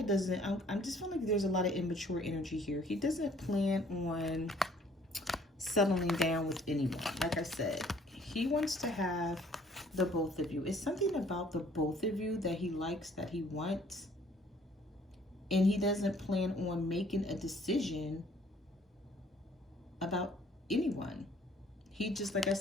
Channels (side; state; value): both; normal; correlation 0.59